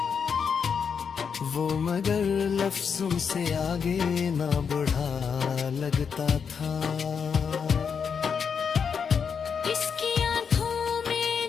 वो मगर लफ्जों से आगे ना बढ़ा लगता था। इसकी आंखों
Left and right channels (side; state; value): right; quieter; 6.5 dB